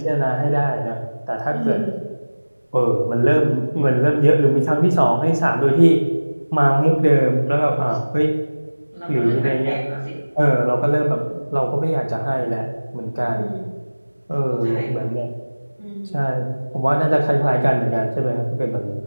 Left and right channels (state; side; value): inverted; both; correlation -1.00